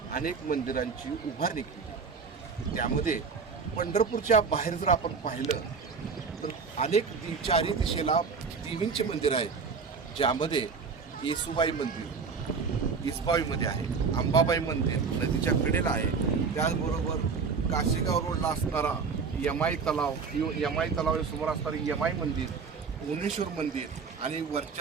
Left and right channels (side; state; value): left; quieter; 5.3 dB